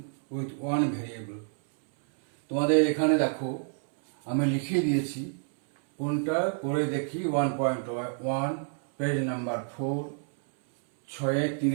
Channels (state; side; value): silent; left; 59 dB below the other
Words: with one variable. তোমাদের এখানে দেখো আমি লিখিয়ে দিয়েছি কোনটা করে দেখি 1.1 পেজ নাম্বার 4